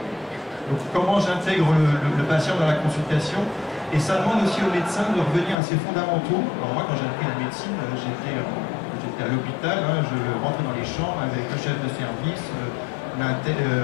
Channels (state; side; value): drops out; right; at 5.6 s